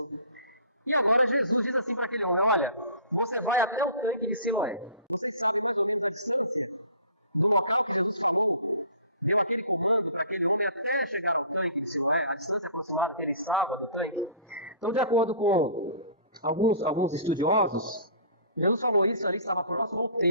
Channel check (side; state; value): both; inverted; correlation -0.46